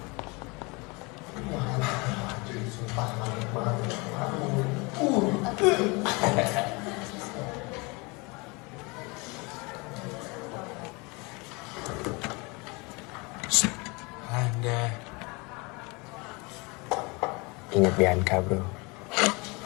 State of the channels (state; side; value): quieter; right; 27.6 dB